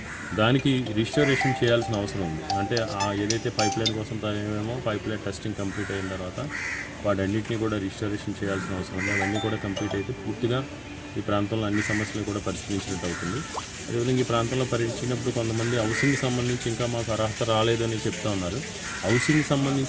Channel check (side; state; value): both; identical; correlation 1.00